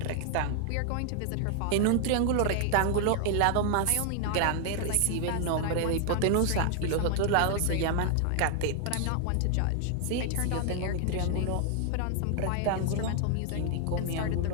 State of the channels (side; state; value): both; different; correlation 0.00